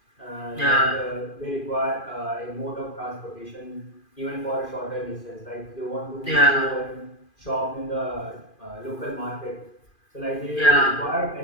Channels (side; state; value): right; late; 2.5 ms